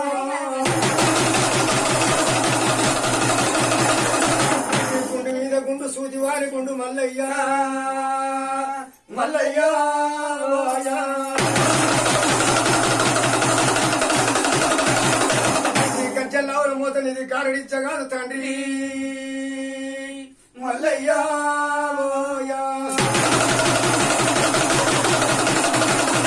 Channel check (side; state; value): both; identical; correlation 1.00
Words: గుండు మీద గుండు సూది వారి గుండు మల్లయ్య మల్లయ్య గజ్జల్లావుల మూతనిది కారడిచ్చగాదు తండ్రి మల్లయ్య